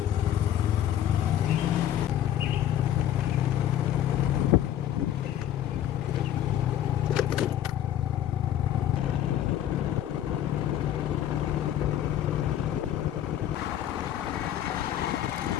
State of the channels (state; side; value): quieter; right; 11.2 dB